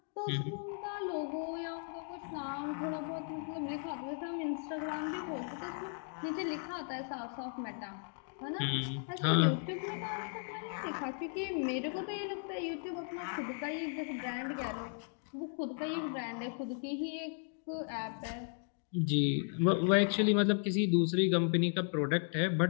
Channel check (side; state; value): right; silent; 54 dB below the other